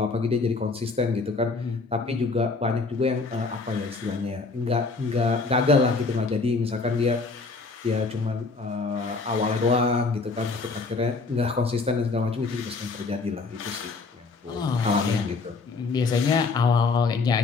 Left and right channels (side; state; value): right; quieter; 4.1 dB